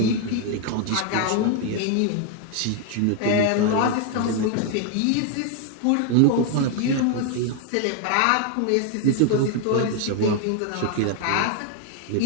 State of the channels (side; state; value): both; different; correlation 0.00